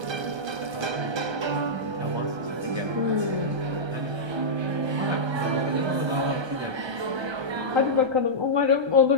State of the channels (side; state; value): left; late; 1.3 ms